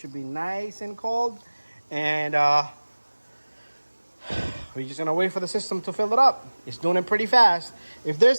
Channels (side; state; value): both; inverted; correlation -1.00